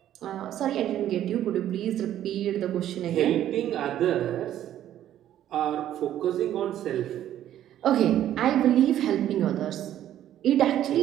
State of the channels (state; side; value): quieter; left; 11.7 dB